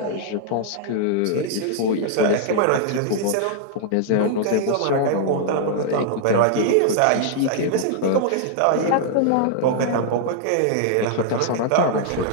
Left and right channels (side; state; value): both; different; correlation -0.01